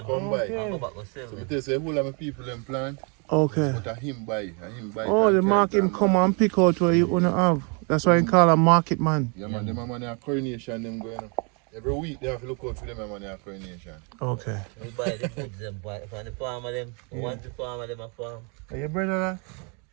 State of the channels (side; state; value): left; quieter; 35.3 dB